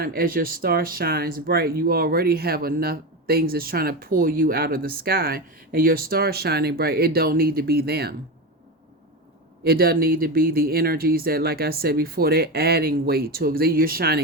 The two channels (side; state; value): both; normal; correlation 0.18